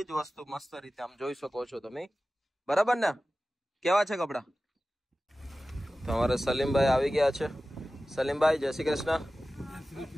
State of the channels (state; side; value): normal; both; correlation 0.96